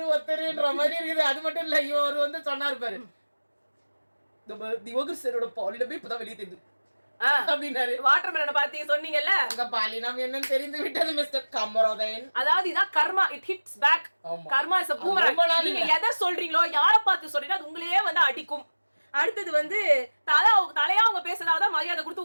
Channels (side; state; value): both; inverted; correlation -1.00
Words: ஒருத்தருன்ற மாதிரி இருக்குது. அது மட்டும் இல்ல, இவர் வந்து சொன்னாரு பாரு, திவோகர் பாலினமே இப்பதான் வெளியே தெரியுது அப்படின்னாரு. வாட்டர்மெலனை பாத்தீங்க சொன்னீங்கல்ல, அங்க பாலினம் என்னன்னு தெரிந்து விட்டது மிஸ்டர் கமரோதயன். அதாவது இதான் karma, it hits back. Karma is a boomerang. நீங்க எதை சொல்றீங்களோ யாரை பார்த்து சொல்றீங்களோ அது உங்களையே வந்து அடிக்கும். அடுத்தது வந்து தலையா அவங்க பேசுறதாதான் மரியாதை கொடுத்து